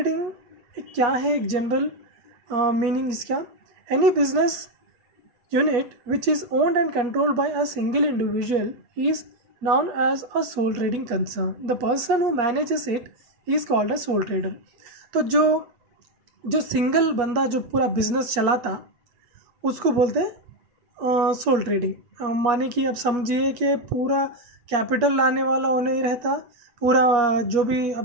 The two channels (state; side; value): late; left; 8.4 ms